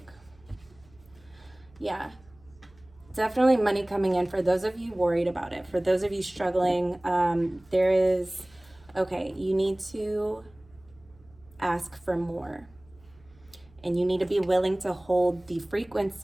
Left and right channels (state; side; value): noise; right; hum, 28 dB below the sound